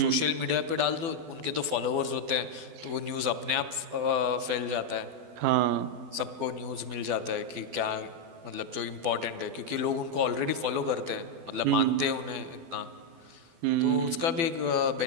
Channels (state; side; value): late; left; 12 ms